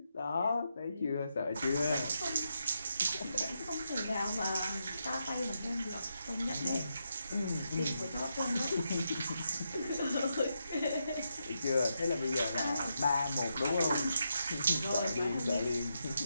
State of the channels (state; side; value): inverted; both; correlation -0.83